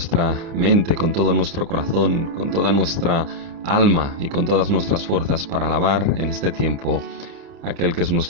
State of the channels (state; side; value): late; left; 29 ms